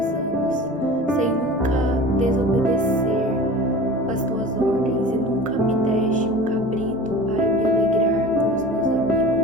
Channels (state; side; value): noise; left; rumble, 27 dB below the sound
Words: anos, sem nunca desobedecer as tuas ordens, e nunca me deste um cabrito para me alegrar com os meus